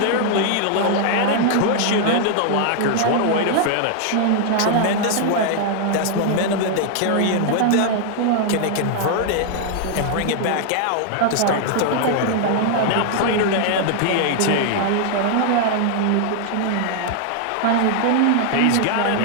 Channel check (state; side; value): different; both; correlation 0.00